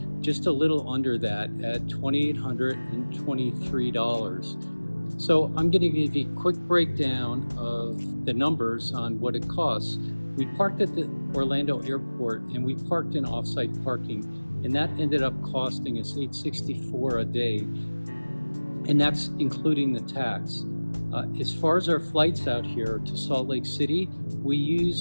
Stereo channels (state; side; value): inverted; both; correlation -1.00